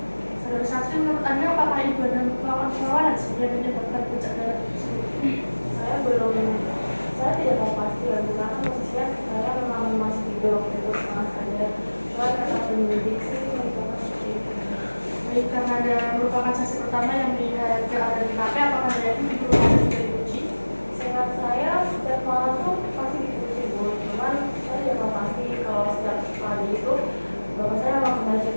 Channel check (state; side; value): inverted; both; correlation -1.00